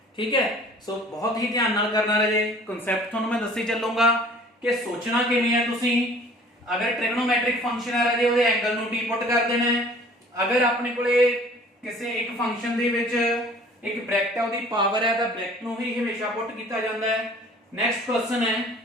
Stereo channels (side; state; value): both; normal; correlation 0.50